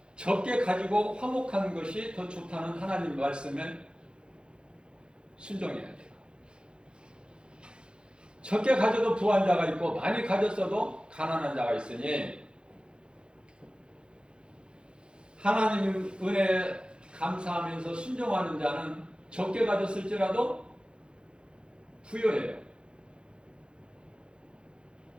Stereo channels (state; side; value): late; left; 0.053 ms